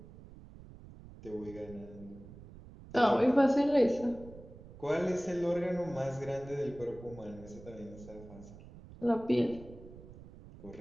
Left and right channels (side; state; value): right; noise; rumble, 17 dB below the sound